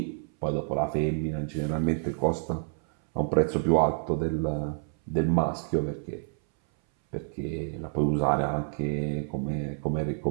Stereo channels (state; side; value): silent; left; 59 dB below the other